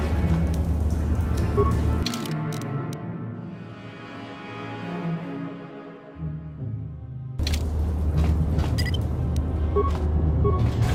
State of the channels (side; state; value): both; identical; correlation 1.00